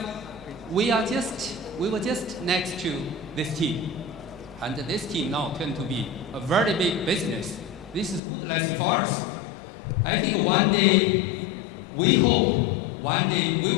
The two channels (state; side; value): drops out; right; at 8.2 s